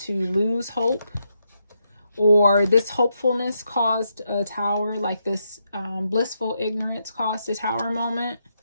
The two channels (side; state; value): both; inverted; correlation -0.81